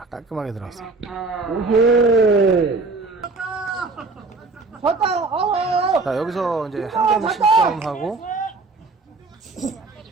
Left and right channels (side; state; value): left; quieter; 3.7 dB